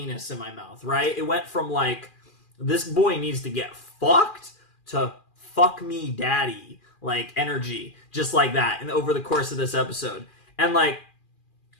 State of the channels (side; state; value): right; late; 2.4 ms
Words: in my mouth, right? It went from like, this boy needs to get fucked to fuck me daddy, like energy, just like that, and over the course of this episode. And like,